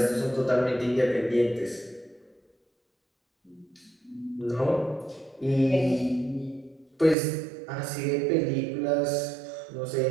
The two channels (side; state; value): left; drops out; at 7.2 s